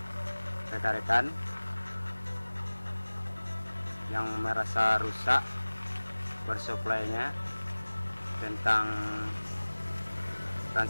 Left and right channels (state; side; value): inverted; both; correlation -1.00